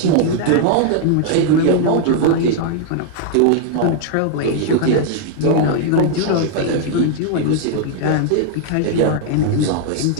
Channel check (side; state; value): both; different; correlation -0.01